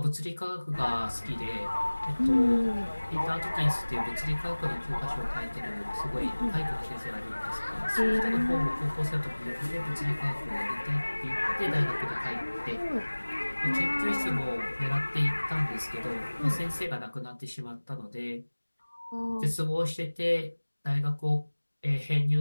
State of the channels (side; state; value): both; inverted; correlation -1.00